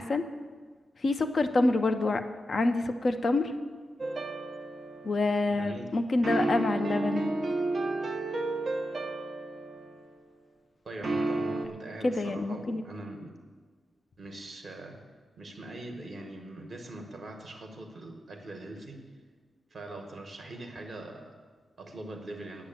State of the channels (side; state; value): both; normal; correlation 0.90